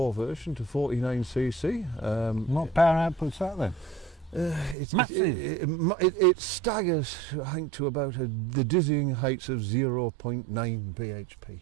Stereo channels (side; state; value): left; drops out; at 4.8 s